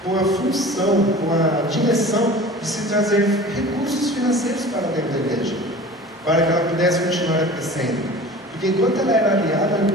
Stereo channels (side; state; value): both; normal; correlation 0.40